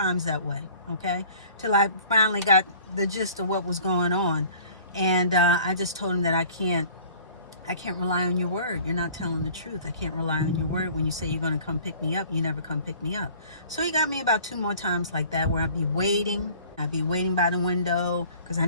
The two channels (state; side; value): inverted; both; correlation -0.49